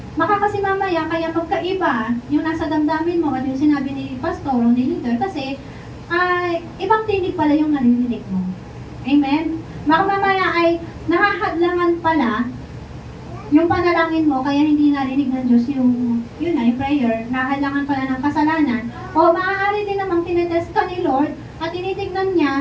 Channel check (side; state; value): both; identical; correlation 1.00